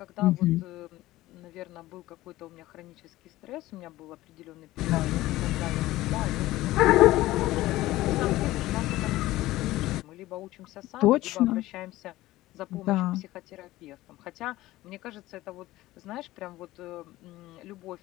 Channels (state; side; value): quieter; right; 17.0 dB